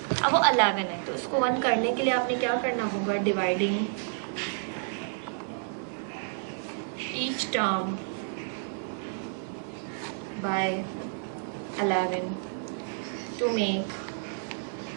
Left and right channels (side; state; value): left; silent; digital silence